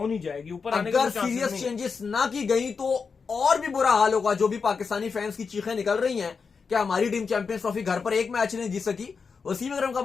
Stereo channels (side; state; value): right; quieter; 5.3 dB